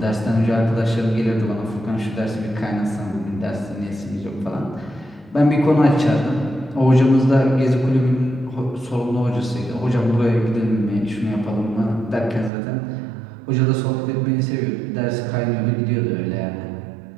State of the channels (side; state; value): left; drops out; at 12.5 s